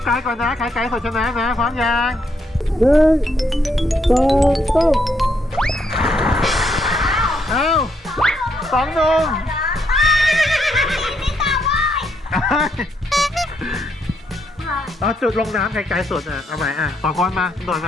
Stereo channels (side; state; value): both; normal; correlation 0.75